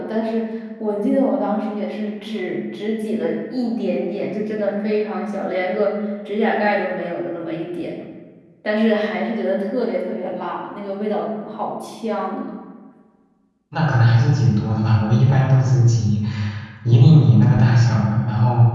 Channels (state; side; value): identical; both; correlation 1.00